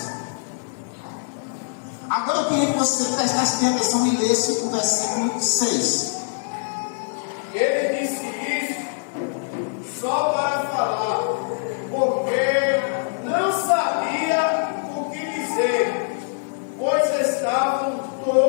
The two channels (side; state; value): right; silent; digital silence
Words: Agora eu queria que você prestasse atenção e lesse o versículo 6. Ele disse isso só para falar, porque não sabia o que dizer, pois estavam